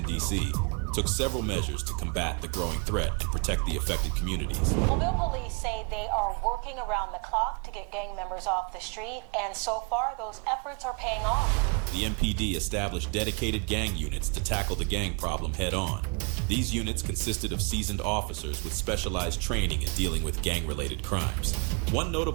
D.C., took several measures to combat the growing threat and protect the affected communities. Mobile police say they are working around the clock to get gang members off the street, and so far those efforts are paying off. The MPD established dedicated gang units to tackle the gang problem head on. These units consisted of seasoned officers with specialized training in dealing with gang-related crimes. One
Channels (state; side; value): quieter; left; 34.6 dB